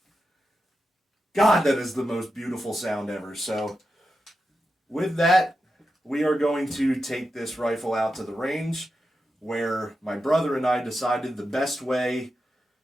God, that is the most beautiful sound ever. So with that, we are going to take this rifle out to the range. where my brother and I decided the best way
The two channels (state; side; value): normal; both; correlation 0.89